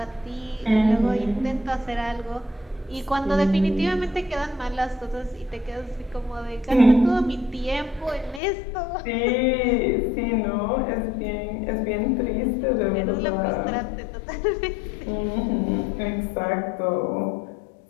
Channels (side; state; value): right; drops out; at 8.4 s